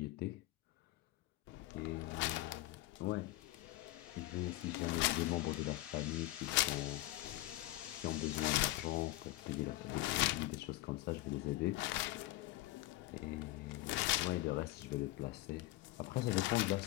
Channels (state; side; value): quieter; right; 16.9 dB